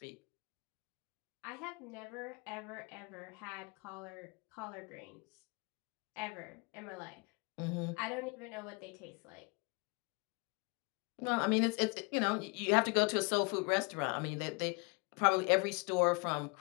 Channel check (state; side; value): quieter; right; 29.9 dB